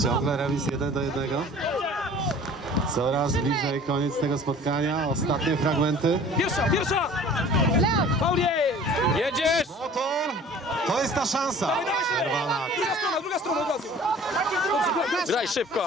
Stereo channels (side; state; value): both; normal; correlation 0.47